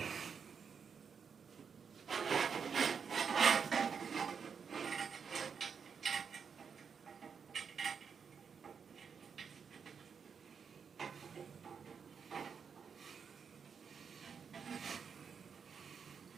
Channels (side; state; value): left; quieter; 6.4 dB